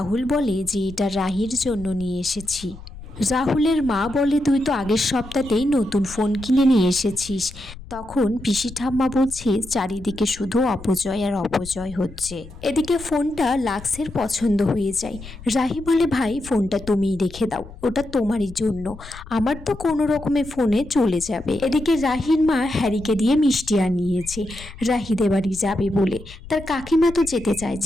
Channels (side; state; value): left; noise; rumble, 16 dB below the sound